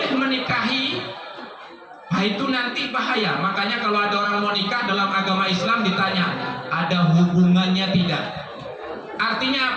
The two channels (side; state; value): both; identical; correlation 1.00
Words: menikahi, nah itu nanti bahaya. Makanya kalau ada orang mau nikah dalam agama Islam ditanya, ada hubungannya tidak?